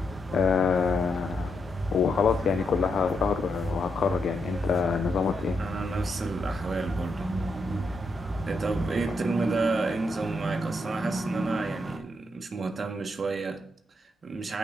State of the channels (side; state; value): both; normal; correlation 0.81